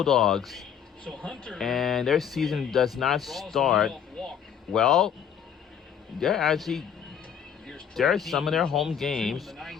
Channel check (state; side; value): quieter; right; 8.2 dB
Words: And their season does not start. Well, there are some of their home games.